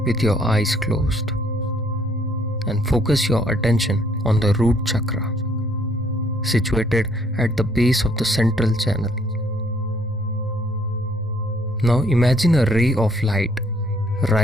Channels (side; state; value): both; normal; correlation 0.65